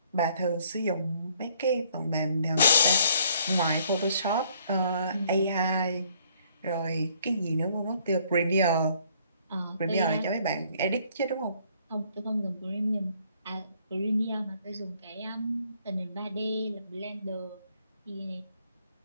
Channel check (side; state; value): both; inverted; correlation -0.64